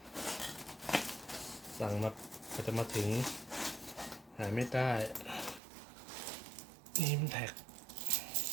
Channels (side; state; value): left; drops out; at 5.6 s